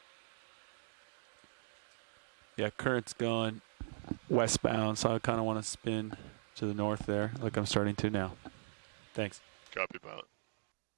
Yeah, current's going westbound, so I kind of want to spin to the north there, like I'm starting to now. Thanks. Copy, pilot.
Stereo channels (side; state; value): left; silent; digital silence